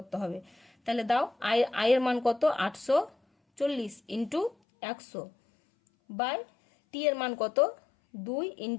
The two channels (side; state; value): right; drops out; at 4.5 s